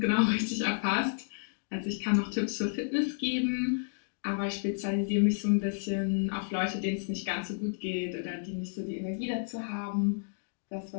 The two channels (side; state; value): right; silent; digital silence